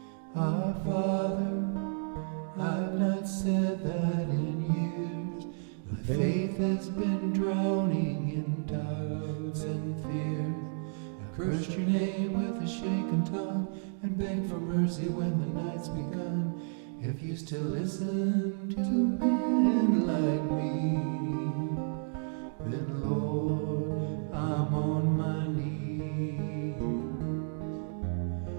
Father, I've not said that in years. My faith has been drowning in doubts and fears. I cursed your name with a shaken tongue and begged for mercy when the night's begun. If you still listen to men like me, then Lord, I'm on my knees.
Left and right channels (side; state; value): left; silent; digital silence